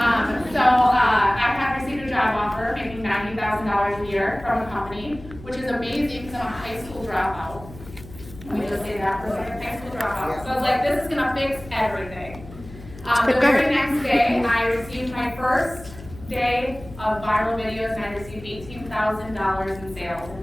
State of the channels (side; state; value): left; noise; hum, 16 dB below the sound